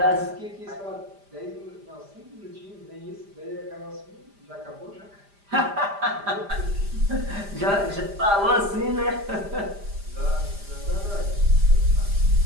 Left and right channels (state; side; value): late; left; 5.0 ms